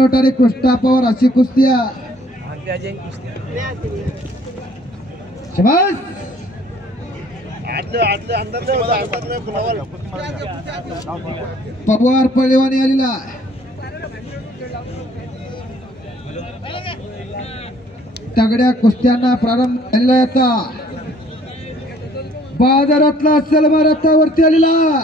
कृष्णा पवार अशी कुस्त्या शाबास. पवार पळेवानी आलेला तगड्या कुस्त्यांना प्रारंभ झालेला याचा बाजारातला सलमा रथावरती आलेला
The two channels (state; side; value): normal; both; correlation 0.58